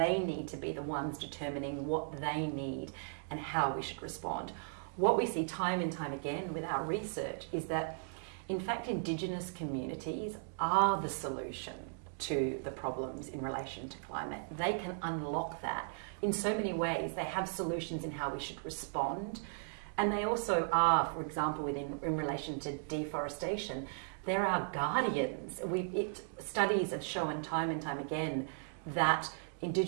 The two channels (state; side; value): silent; left; digital silence